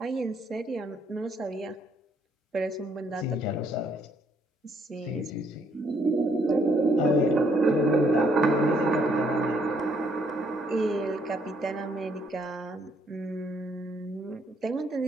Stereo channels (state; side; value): normal; both; correlation 0.69